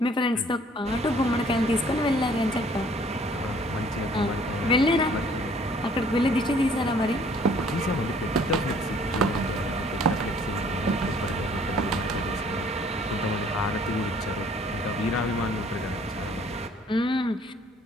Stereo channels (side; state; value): both; normal; correlation 0.57